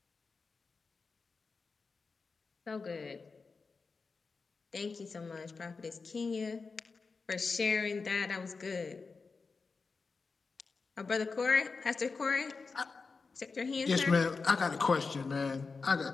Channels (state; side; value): quieter; right; 4.5 dB